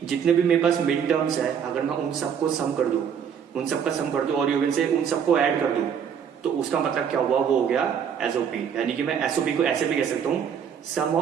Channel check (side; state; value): left; quieter; 7.8 dB